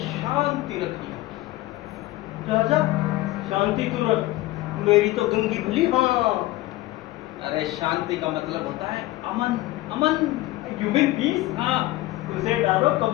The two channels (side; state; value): right; quieter; 17.7 dB